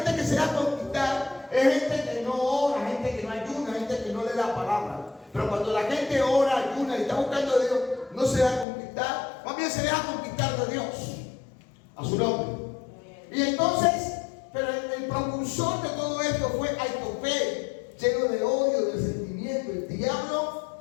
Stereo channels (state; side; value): drops out; right; at 8.7 s